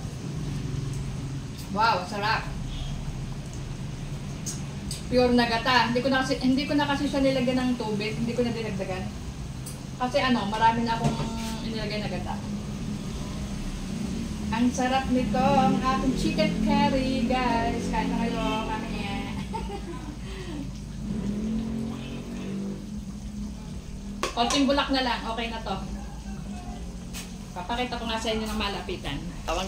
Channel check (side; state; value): both; identical; correlation 1.00